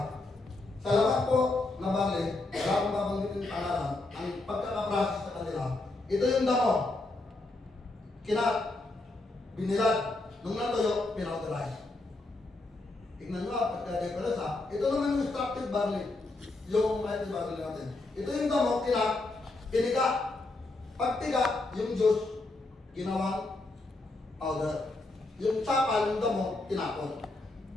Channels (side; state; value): right; quieter; 3.0 dB